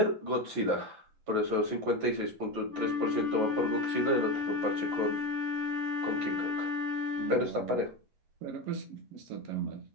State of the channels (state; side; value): late; left; 11 ms